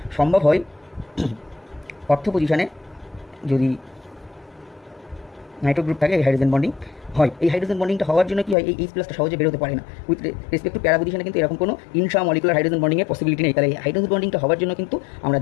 সম্ভব হয় অর্থ পজিশনে যদি নাইট্রো গ্রুপ থাকে, এই হাইড্রোজেন বন্ডিং হয়। এই হাইড্রোজেন বন্ডিংটা হওয়ার জন্য কি হয়, এই H+টা সহজে বেরোতে পারে না। উইথ রেসপেক্ট টু প্যারা পজিশনে কিন্তু এরকম কোনো ইন্ট্রামলিকুলার হাইড্রোজেন বন্ডিংয়ের পসিবিলিটি নেই। তাহলে এই হাইড্রোজেন বন্ডিংটা হওয়ার জন্য কিন্তু আমরা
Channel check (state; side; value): drops out; right; at 8.6 s